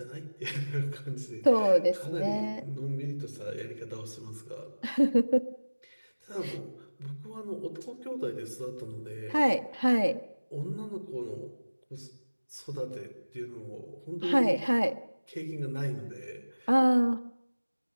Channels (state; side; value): inverted; both; correlation -1.00